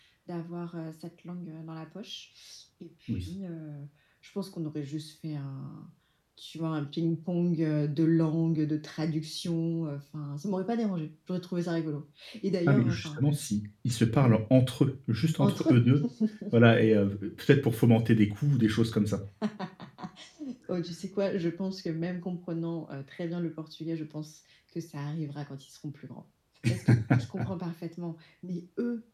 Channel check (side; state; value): both; identical; correlation 1.00